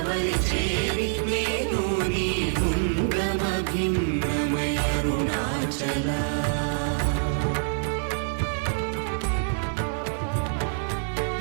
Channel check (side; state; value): left; silent; digital silence